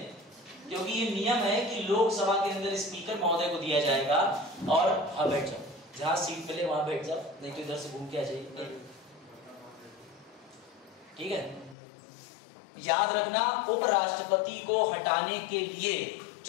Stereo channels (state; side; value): drops out; right; at 11.8 s